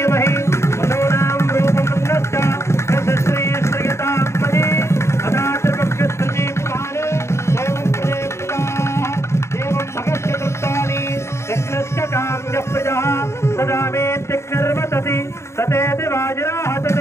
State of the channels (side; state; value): right; late; 0.13 ms